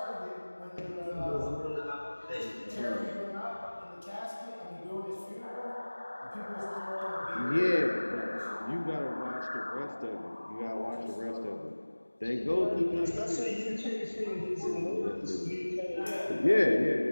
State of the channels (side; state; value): both; inverted; correlation -1.00